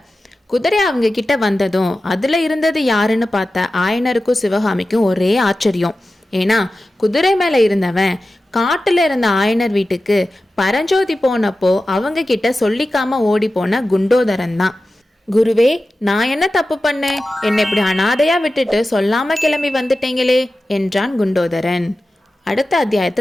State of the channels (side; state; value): both; normal; correlation 0.94